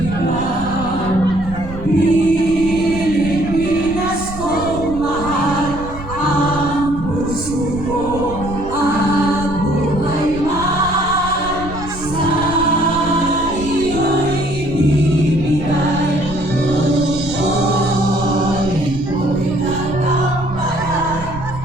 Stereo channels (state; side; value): noise; right; rumble, 11 dB below the sound